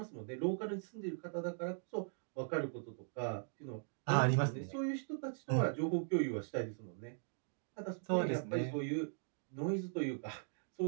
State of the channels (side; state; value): left; silent; digital silence